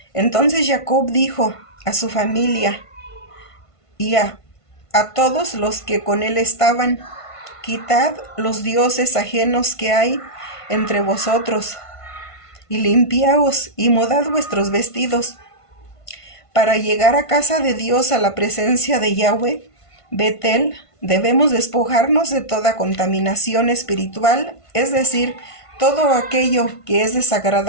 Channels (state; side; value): late; right; 1.5 ms